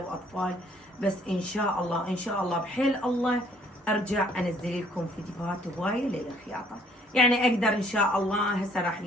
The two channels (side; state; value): both; normal; correlation 0.62